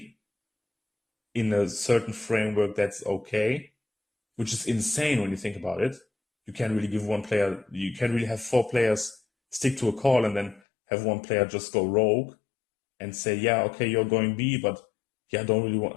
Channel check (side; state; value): right; drops out; at 10.6 s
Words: in a certain framework, that's okay, which is insane when you think about it. You can't really give one player, you can't really have four players stick to a call and then have one player just go rogue and say, okay, you're going B, but I don't really want